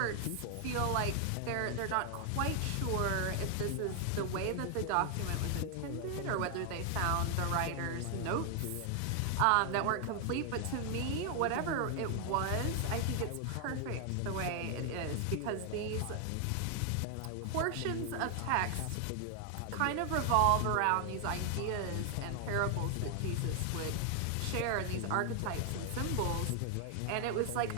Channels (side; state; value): both; different; correlation 0.00